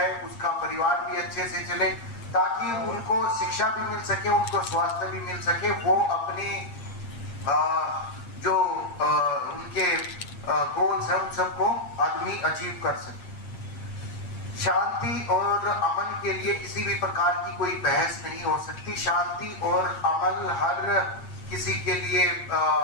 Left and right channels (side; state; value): right; late; 8.6 ms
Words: उसका परिवार भी अच्छे से चले, ताकि उनको शिक्षा भी मिल सके, उनको स्वास्थ्य भी मिल सके, वो अपनी जो उनके गोल्स हैं उन सबको आदमी अचीव कर सके। शांति और अमन के लिए किसी भी प्रकार की कोई बहस नहीं हो सकती। शांति और अमन हर किसी के लिए